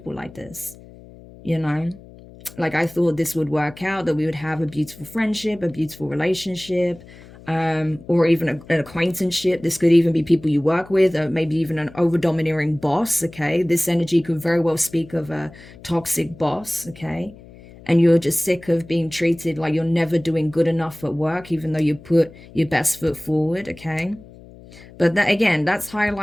like this? You know, like I thought this would work out, that we would have a beautiful friendship, a beautiful relationship, or even an acquaintanceship. This could even be people you work with, or maybe even an over-domineering boss, okay? This energy could very well speak of a toxic boss, okay? And you're just sick of being treated like you're never doing good enough at work, even though you put your best foot forward, okay? But that, again, that's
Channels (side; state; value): left; noise; hum, 20 dB below the sound